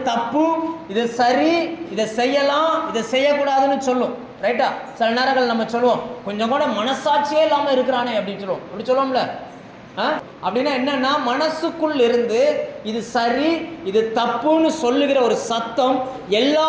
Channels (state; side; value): identical; both; correlation 1.00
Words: தப்பு, இது சரி, இதை செய்யலாம், இதை செய்யக்கூடாதுன்னு சொல்லும். ரைட்டா? சில நேரங்கள் நம்ம சொல்லுவோம், கொஞ்சம் கூட மனசாட்சியே இல்லாமல் இருக்கிறானே அப்படின்னு சொல்லுவோம். அப்படி சொல்லுவோம்ல. அப்படின்னா என்னன்னா, மனசுக்குள் இருந்து இது சரி, இது தப்புன்னு சொல்லுகிற ஒரு சத்தம்